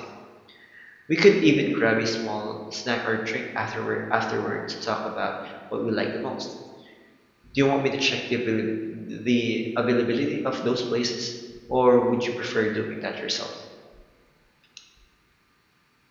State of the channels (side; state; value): both; identical; correlation 1.00